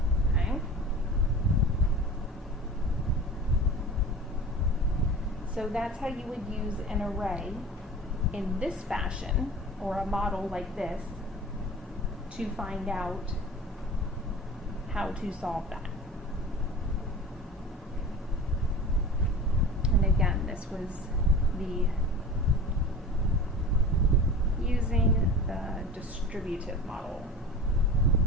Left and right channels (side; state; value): both; normal; correlation 0.36